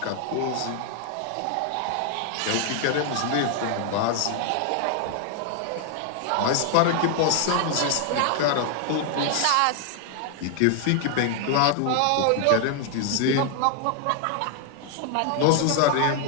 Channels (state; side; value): different; both; correlation 0.00